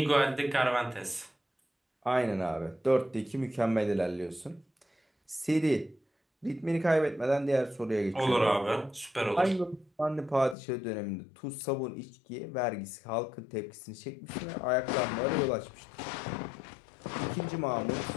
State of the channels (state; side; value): drops out; right; at 10.6 s